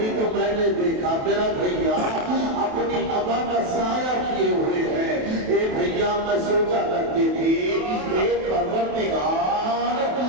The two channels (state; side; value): late; left; 28 ms